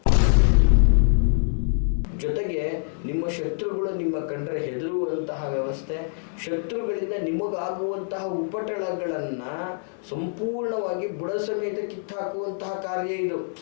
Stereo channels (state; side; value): silent; right; digital silence